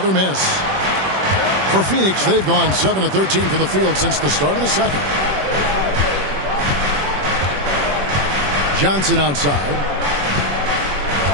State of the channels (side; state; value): left; late; 21 ms